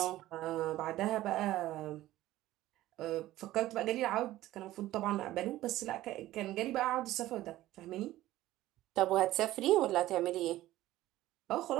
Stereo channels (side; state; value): left; quieter; 15.4 dB